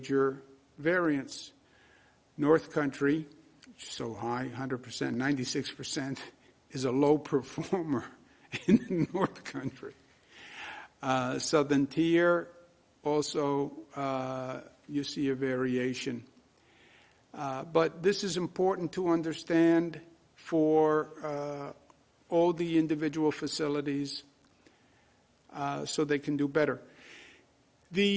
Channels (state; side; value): identical; both; correlation 1.00